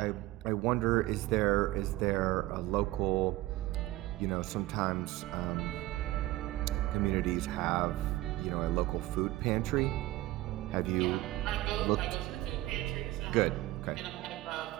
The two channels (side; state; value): left; quieter; 17.4 dB